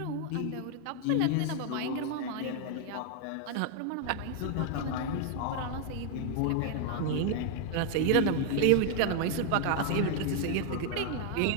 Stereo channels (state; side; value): different; both; correlation 0.00